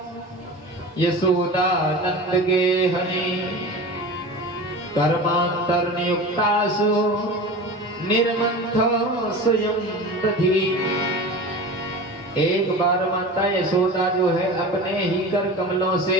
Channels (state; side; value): normal; both; correlation 0.32